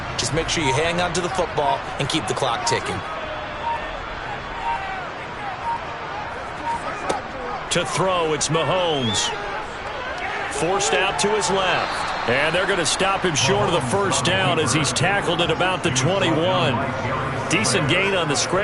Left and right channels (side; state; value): both; identical; correlation 1.00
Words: Just make sure you hang on to the football and keep the clock ticking. To throw, it's Mahomes. Forced out to his left. And they're going to stop him short of the first down as he's tackled at about the 21. Decent gain on the